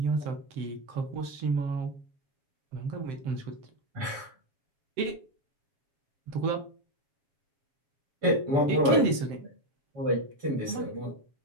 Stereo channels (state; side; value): late; left; 7.6 ms